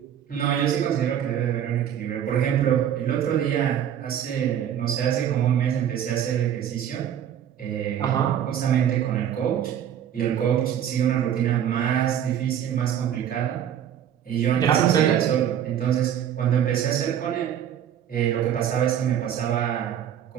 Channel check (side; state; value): left; quieter; 9.8 dB